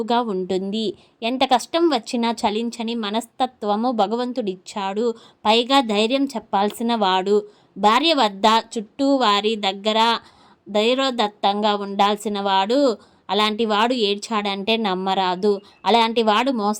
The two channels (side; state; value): both; identical; correlation 1.00